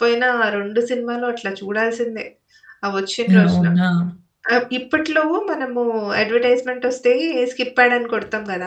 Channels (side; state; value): both; identical; correlation 1.00